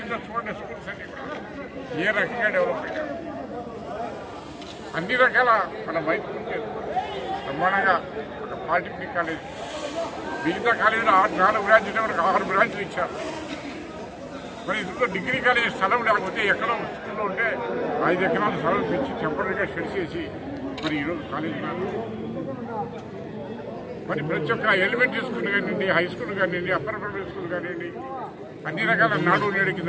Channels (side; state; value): both; identical; correlation 1.00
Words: చూడండి, స్కూల్స్ అన్ని కూడా ఏ రకంగా డెవలప్ అయ్యారు. అన్ని రకాల మన మైత్రి బ్రహ్మాండంగా ఒక పాలిటెక్నిక్ కాలేజ్, మిగతా కాలేజీలో 4 బ్రాంచ్లు వరకు 6 బ్రాంచ్లు ఇచ్చారు. మరి ఇందులో డిగ్రీ కాలేజ్ స్థలం లేకపోతే ఎక్కడో స్కూల్లో ఉంటే 5 ఎకరాల స్థలం పెంచి టెంపరీగా షెడ్ చేసి మరి ఈరోజు కాలేజీ మరి ప్రతి ఒక్క ఎలిమెంటరీ స్కూల్ కానివ్వండి, హై స్కూల్ కానివ్వండి, అప్పర్ ప్రైమరీ స్కూల్ కానివ్వండి, అన్ని రకాల నాడు నేడు కింద